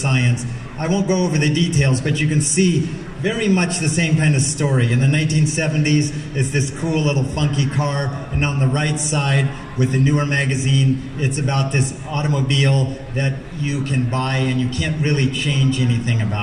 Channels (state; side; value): identical; both; correlation 1.00